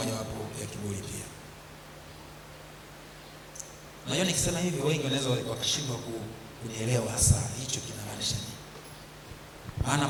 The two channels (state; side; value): identical; both; correlation 1.00